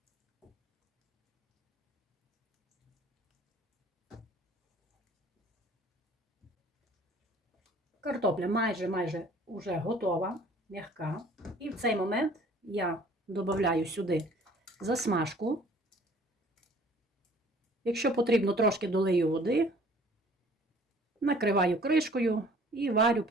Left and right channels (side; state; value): both; normal; correlation 0.53